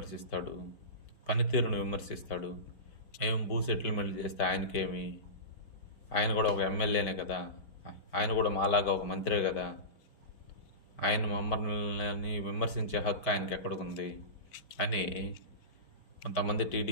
పనితీరును విమర్శిస్తాడు. మేము భూ సెటిల్మెంట్ చేస్తే ఆయనకేమి? ఆయన కూడా ఒక ఎమ్మెల్యేనే కదా, ఆయన కూడా మాలాగా ఒక మంత్రే కదా. ఆయన మమ్మల్ని విమర్శించే హక్కు ఆయనకి ఎక్కడికుంది అని కొంతమంది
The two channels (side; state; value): right; late; 4.5 ms